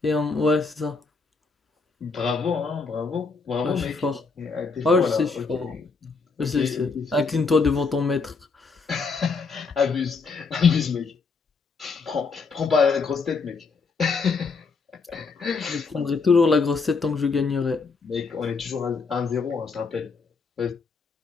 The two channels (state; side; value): quieter; right; 4.6 dB